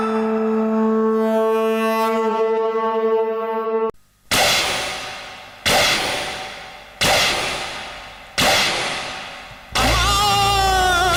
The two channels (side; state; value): both; identical; correlation 1.00